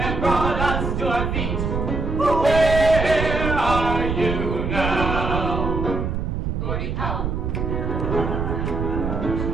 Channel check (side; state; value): right; noise; rumble, 2 dB below the sound